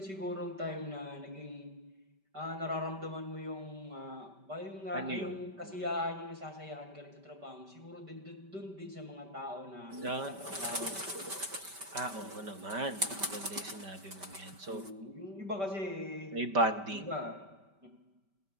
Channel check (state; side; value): late; left; 5.1 ms